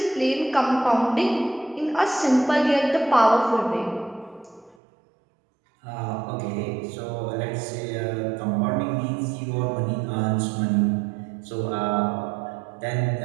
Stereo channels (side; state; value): left; drops out; at 4.8 s